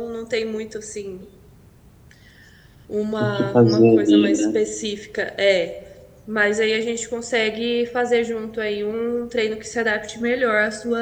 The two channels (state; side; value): identical; both; correlation 1.00